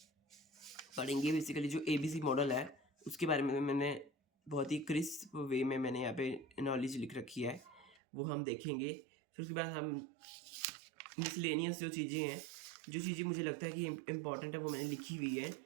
पढ़ेंगे। बेसिकली जो ABC मॉडल है उसके बारे में मैंने बहुत ही क्रिस्प वे में मैंने यहाँ पे नॉलेज लिख रखी है, वो हम देखेंगे। फिर उसके बाद हम मिसलेनियस जो चीज़ें हैं, जो चीज़ें मुझे लगता है कि इम्पॉर्टेंट है वो मैंने लिखी हुई है,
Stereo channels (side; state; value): left; drops out; at 8.0 s